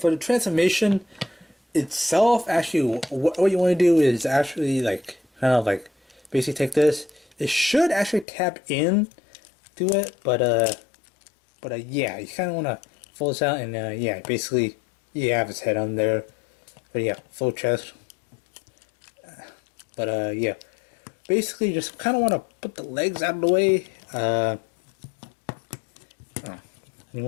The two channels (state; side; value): drops out; right; at 8.2 s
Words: the transformation itself, actually, what you want to do is actually like kind of like basically take this. It should actually tap in to it, but yeah, you kind of want to fold this out, and yeah, basically you have his head on there. But yeah, full chest. But yeah, basically just kind of want to put the legs out of the way. You